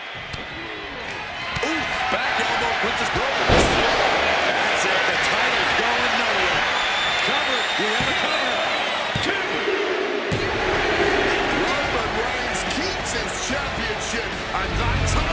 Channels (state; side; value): identical; both; correlation 1.00